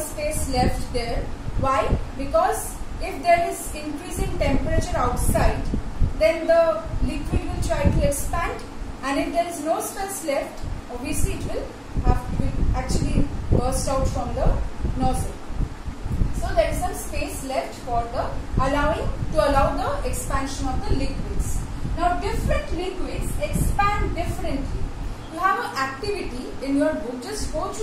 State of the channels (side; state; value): both; identical; correlation 1.00